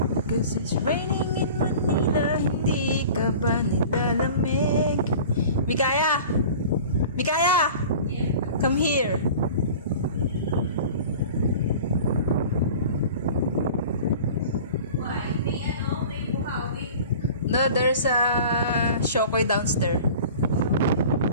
Cause it's raining in Manila, hindi ka ba nilalamig? Mikaya! Mikaya! Yeah. Come here! No, there's a Shokoy downstairs.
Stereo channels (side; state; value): both; inverted; correlation -0.41